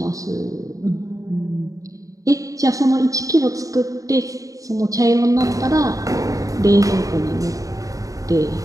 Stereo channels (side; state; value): left; late; 0.16 ms